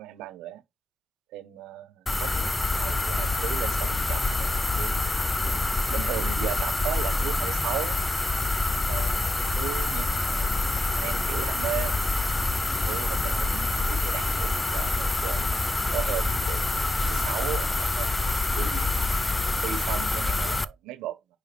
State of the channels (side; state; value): both; normal; correlation 0.88